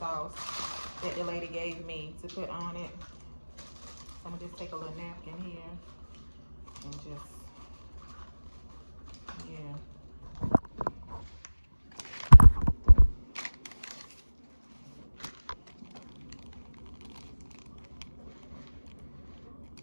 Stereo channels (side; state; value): both; inverted; correlation -1.00